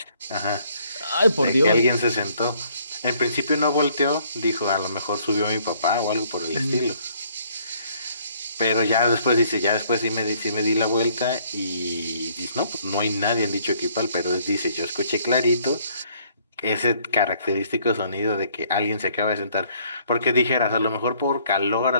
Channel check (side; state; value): both; inverted; correlation -0.63